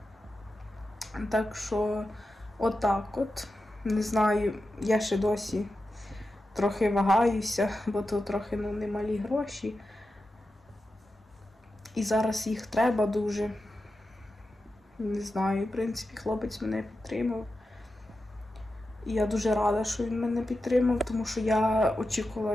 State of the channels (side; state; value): both; normal; correlation 0.91